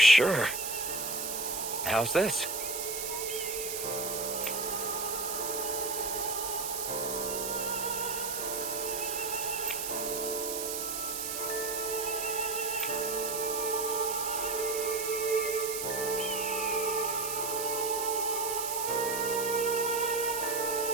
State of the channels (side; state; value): right; noise; hiss, 4 dB below the sound